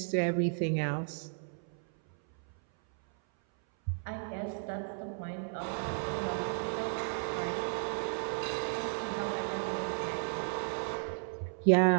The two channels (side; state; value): left; silent; 55 dB below the other